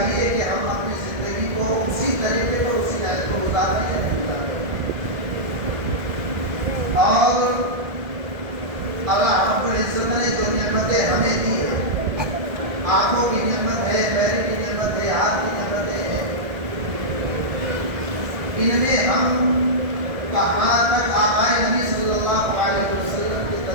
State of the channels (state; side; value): late; left; 1.7 ms